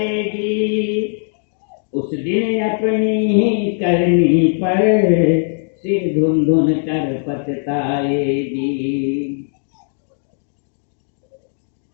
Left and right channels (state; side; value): silent; right; digital silence